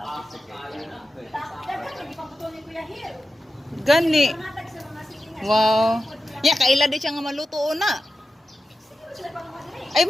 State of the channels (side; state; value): both; normal; correlation 0.92